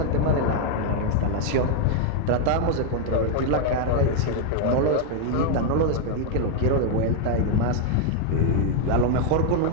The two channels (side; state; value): both; different; correlation 0.00